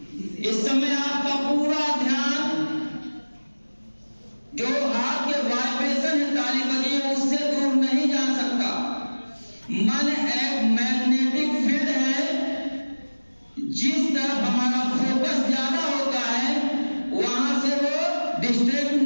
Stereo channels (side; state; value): both; inverted; correlation -1.00